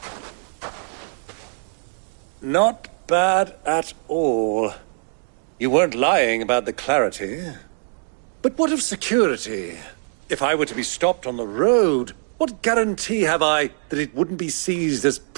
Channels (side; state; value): left; silent; digital silence